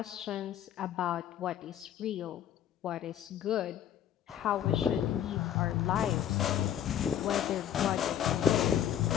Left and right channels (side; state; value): right; quieter; 10.0 dB